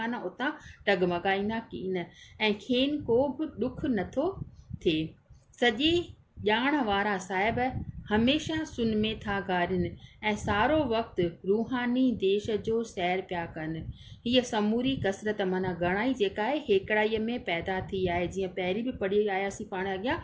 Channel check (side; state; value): both; identical; correlation 1.00